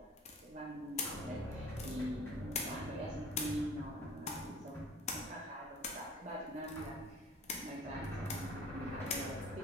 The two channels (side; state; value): both; normal; correlation 0.47